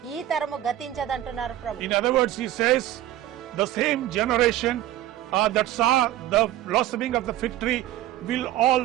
ఈ తరము గతించదంటున్నారు ప్రభు. In other words, he says the same generation that saw the blossoming of the fig tree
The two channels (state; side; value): quieter; left; 13.5 dB